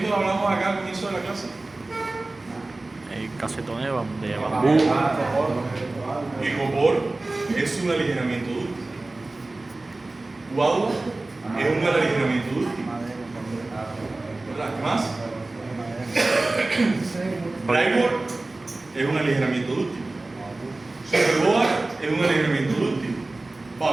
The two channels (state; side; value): quieter; left; 3.0 dB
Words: hablamos acá al comienzo de la clase? Casetón de bambú. El copor es un aligeramiento dúctil. Guadua es un aligeramiento dúctil. ¿Verdad? ¿Qué más? Plywood es un aligeramiento dúctil. Superboard es un aligeramiento dúctil.